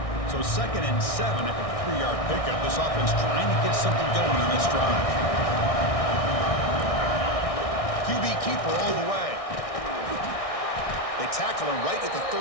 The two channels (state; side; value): late; right; 1.6 ms